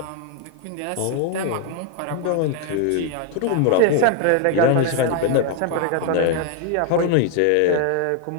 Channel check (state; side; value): different; both; correlation 0.00